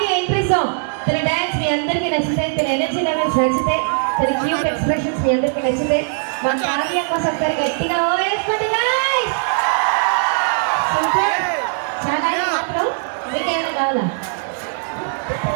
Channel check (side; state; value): left; silent; digital silence